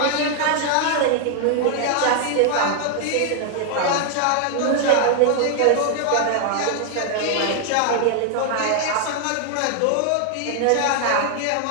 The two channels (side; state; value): both; different; correlation 0.00